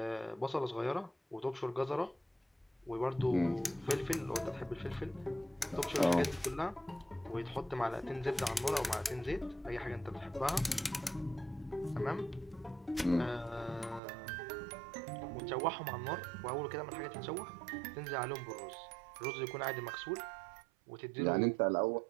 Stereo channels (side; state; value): left; drops out; at 14.0 s